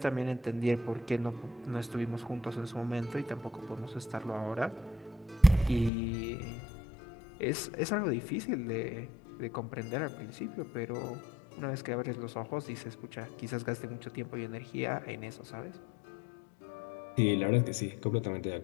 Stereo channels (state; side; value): drops out; right; at 5.9 s